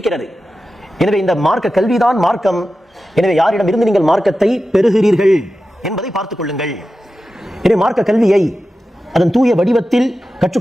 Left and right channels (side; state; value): both; normal; correlation 0.93